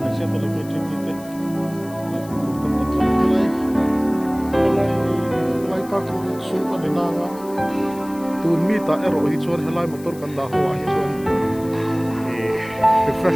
saya tuh lebih cerita mulai parking sumpah di nanga tuh mita ero hicuan helai motor kandah hoa hicuan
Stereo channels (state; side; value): noise; left; hiss, 21 dB below the sound